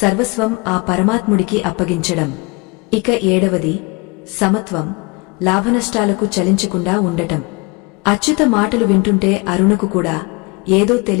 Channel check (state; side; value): quieter; right; 28.3 dB